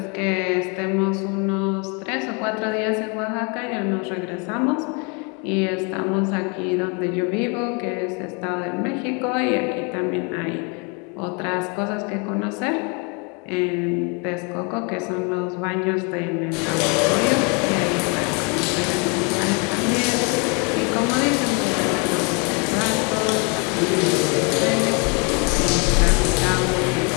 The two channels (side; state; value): right; quieter; 33.6 dB